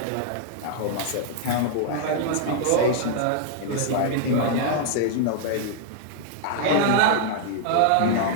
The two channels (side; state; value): both; different; correlation -0.01